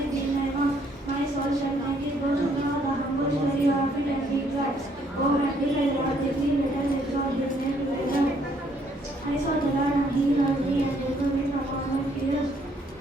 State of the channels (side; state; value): both; normal; correlation 0.67